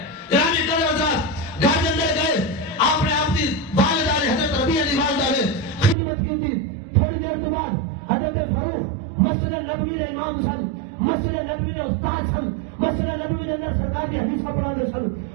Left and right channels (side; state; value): left; drops out; at 6.0 s